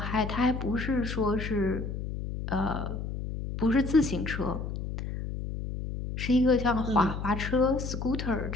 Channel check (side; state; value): left; noise; hum, 5 dB below the sound